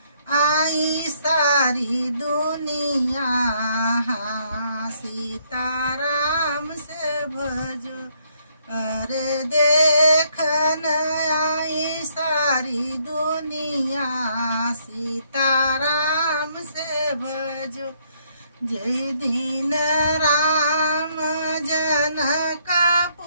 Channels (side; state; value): both; inverted; correlation -0.70